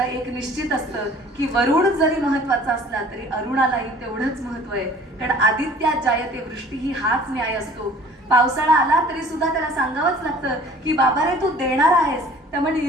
एक निश्चित असतं की वरुण जरी महत्वाचा असला तरी अरुणालाही तेवढंच महत्व आहे. कारण आदित्यात जायते वृष्टी ही हाच न्याय असतो. पावसाळा आला तरी सुद्धा त्याला सांगावंच लागतं की बाबा रे, तू देणार आहेस, त्यामुळे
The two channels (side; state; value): both; normal; correlation 0.49